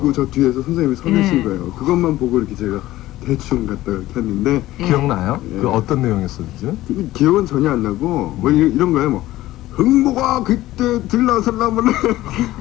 저 뒤에서 선생님이 서 계신 거예요. 그것만 보고 이렇게 제가 대충 갖다 이렇게 했는데 기억나요? 그 어떤 내용이었었지? 기억은 전혀 안 나고 뭐 이런 거예요. 뭐 흥보가 그때 들나설라면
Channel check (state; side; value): quieter; right; 16.0 dB